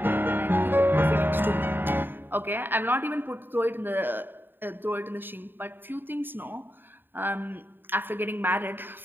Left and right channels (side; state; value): left; late; 0.095 ms